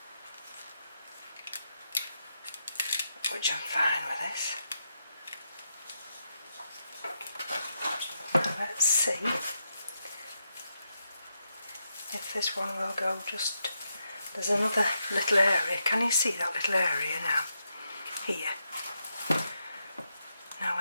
which I'm fine with this. Let's see if this one will go just... There's another little area. Can you see that little area now? Here. Now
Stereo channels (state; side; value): inverted; both; correlation -0.83